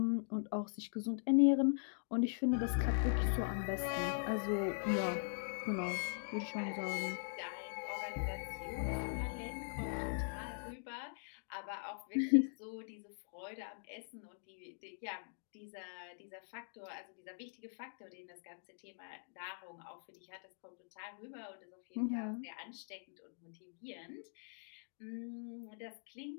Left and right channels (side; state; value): right; silent; digital silence